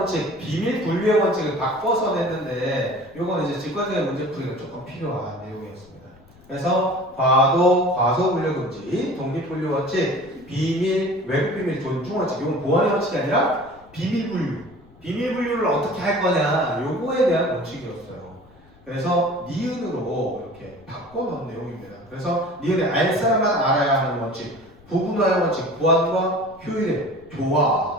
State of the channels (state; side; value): noise; left; rumble, 26 dB below the sound